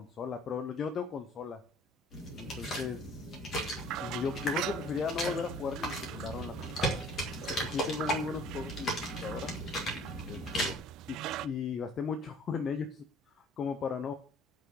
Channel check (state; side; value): normal; both; correlation 0.51